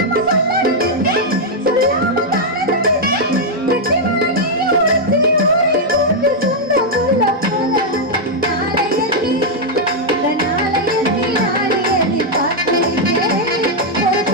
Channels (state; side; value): normal; both; correlation -0.02